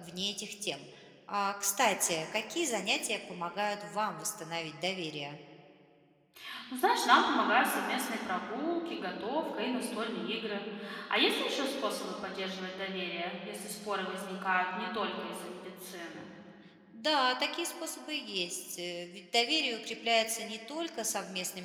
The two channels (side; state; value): both; identical; correlation 1.00